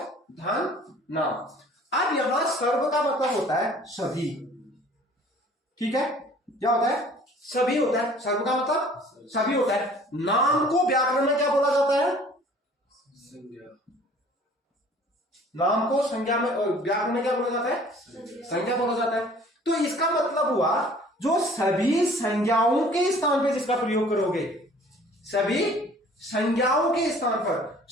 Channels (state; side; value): normal; both; correlation 0.51